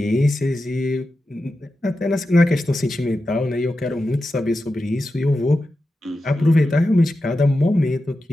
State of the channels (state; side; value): normal; both; correlation 0.91